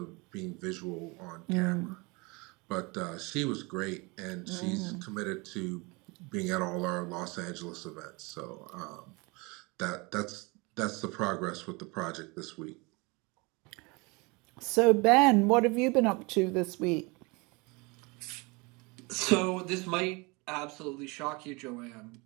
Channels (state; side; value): quieter; left; 27.3 dB